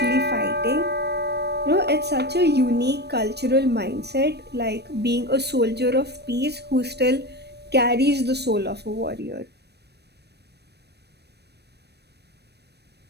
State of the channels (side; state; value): left; late; 0.48 ms